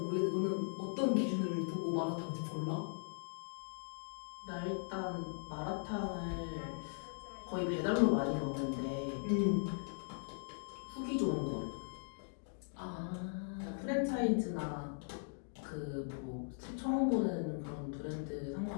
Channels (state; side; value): silent; right; digital silence